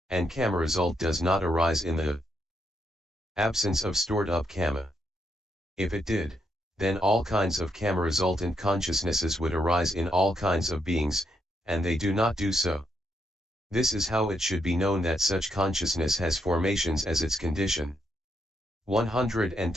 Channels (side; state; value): both; normal; correlation 0.78